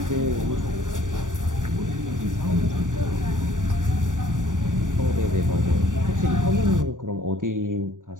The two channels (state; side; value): late; left; 0.88 ms